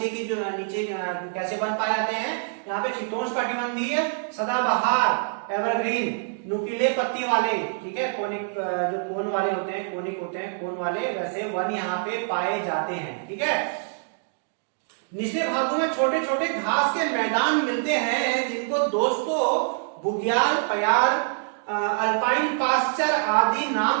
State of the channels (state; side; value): silent; left; digital silence